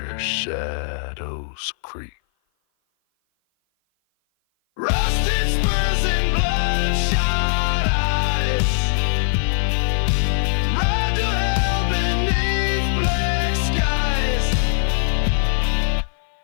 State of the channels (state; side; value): silent; right; 56 dB below the other